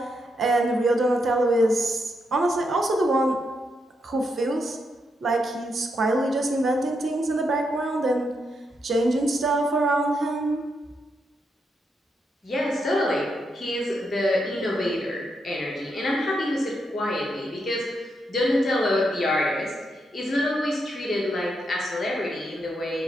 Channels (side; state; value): both; normal; correlation 0.81